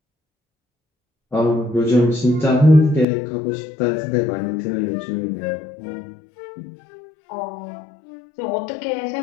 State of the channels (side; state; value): right; drops out; at 3.1 s